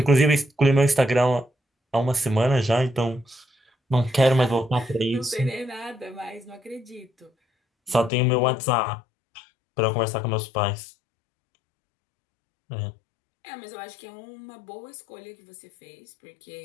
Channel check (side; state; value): right; drops out; at 8.1 s